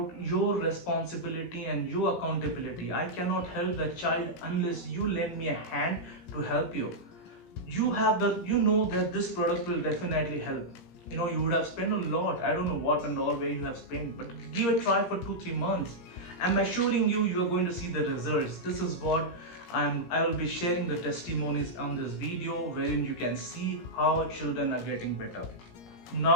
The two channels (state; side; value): late; right; 17 ms